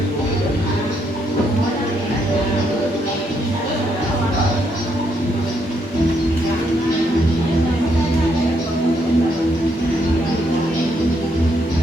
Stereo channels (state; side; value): normal; both; correlation 0.75